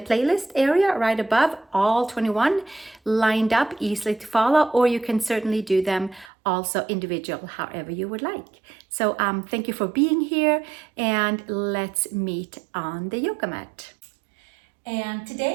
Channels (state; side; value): drops out; left; at 6.3 s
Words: area right above, all 21 lined up, easily to follow, or you can certainly do them also individual, however you would like. So thank you for being here, and let's meet on the yoga mat. And